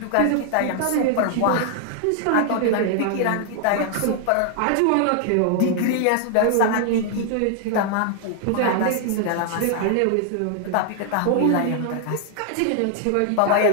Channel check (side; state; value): both; different; correlation 0.00